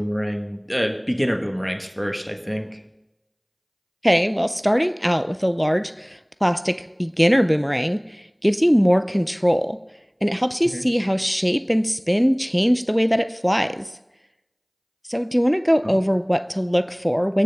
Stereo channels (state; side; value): identical; both; correlation 1.00